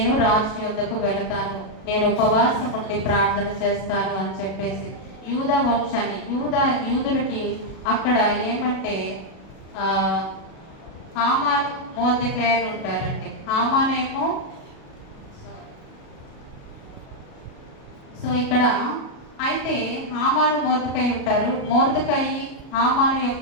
రాజు యొద్దకు వెళతాను, నేను ఉపవాసం ఉండి ప్రార్థన చేస్తాను అని చెప్పేసి యూదా వంశాన్ని యూదులకి అక్కడ ఏమంటే హామాను మొర్దెకై ఉంటారండి. హామానేమో సో ఇక్కడ అయితే హామాను మొర్దెకై ఉంటారు. మొర్దెకై హామాను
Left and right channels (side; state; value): right; late; 37 ms